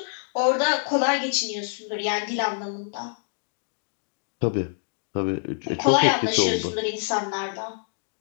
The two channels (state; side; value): silent; right; digital silence